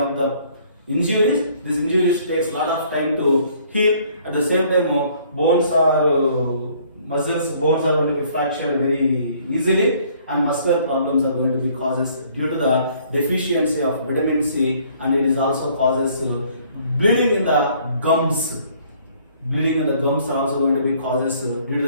the injuries, this injuries takes a lot of time to heal. At the same time, bones are muscles, bones are going to be fractured very easily, and muscular problems are going to be causes due to the deficiency of vitamin C, and it is also causes bleeding in the gums. Bleeding in the gums are also going to be causes due to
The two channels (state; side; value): inverted; both; correlation -0.60